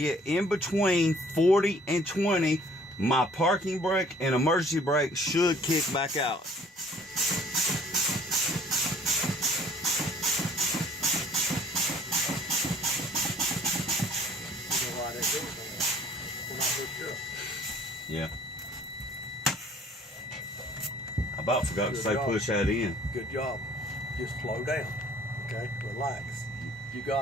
in between 40 and 20, my parking brake and emergency brake should kick back out. Yeah. I about forgot to say push that in. Good job. Just slow down. Okay? Relax. You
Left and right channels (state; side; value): normal; both; correlation 0.55